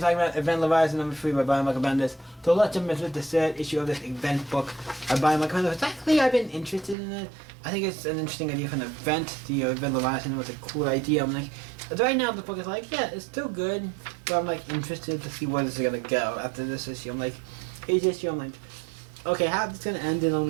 about Event Leviathan number 3 by Brian Michael Bendis. So let's jump into the third issue of this event book by Brian Michael Bendis. Actually, I've been interested in it. I think it's an interesting idea for an event. The Event Leviathan was a cool idea. I'm like, right now the book is like, yeah, it's still good, but I'm like interested to see where this is gonna go after this issue. I'm like, each issue, I'm like, okay, how is this gonna end in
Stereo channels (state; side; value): drops out; left; at 7.0 s